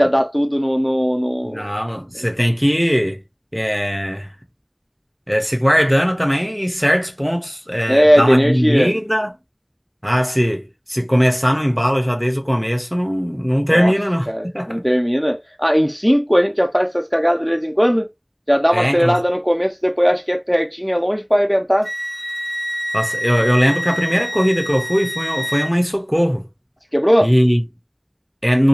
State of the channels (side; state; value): both; identical; correlation 1.00